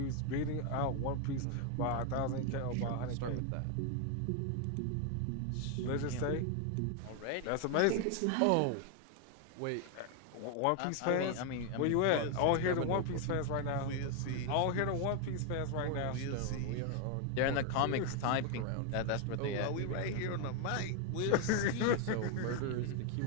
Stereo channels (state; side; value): different; both; correlation 0.01